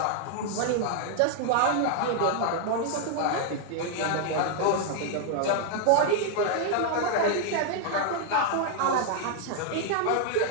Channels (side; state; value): both; different; correlation 0.00